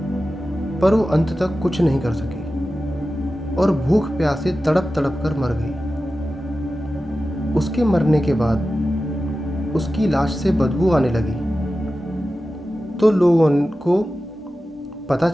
पर वो अंत तक कुछ नहीं कर सकी और भूख प्यास से तड़प तड़प कर मर गई। उसके मरने के बाद उसकी लाश से बदबू आने लगी, तो लोगों को पता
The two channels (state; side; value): normal; both; correlation 0.94